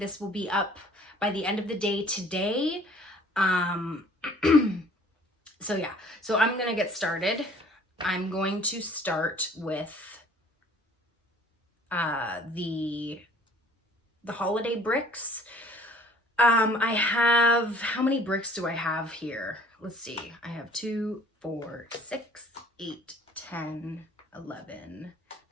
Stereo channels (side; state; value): both; normal; correlation 0.53